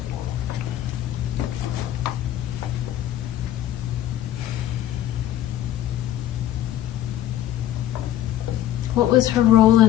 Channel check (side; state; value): right; quieter; 12.4 dB